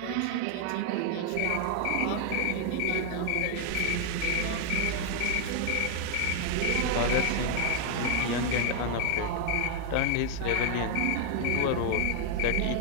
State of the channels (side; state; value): both; different; correlation 0.00